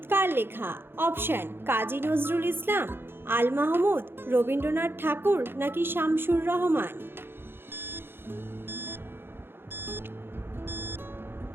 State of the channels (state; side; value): late; left; 0.11 ms